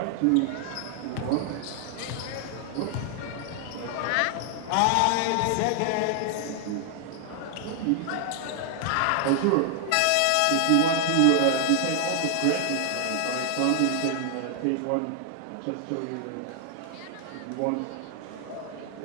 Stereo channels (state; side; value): different; both; correlation 0.00